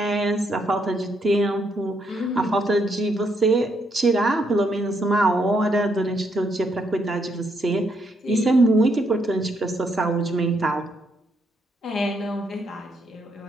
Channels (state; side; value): normal; both; correlation 0.76